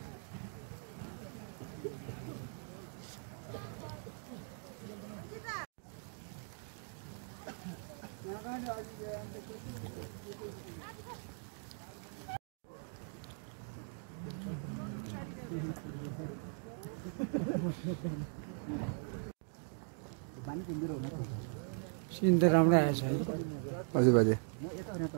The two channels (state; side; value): silent; left; 51 dB below the other